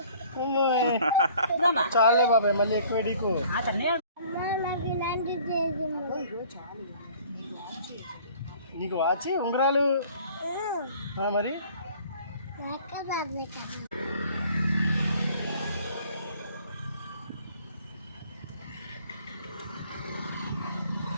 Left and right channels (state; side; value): inverted; both; correlation -0.53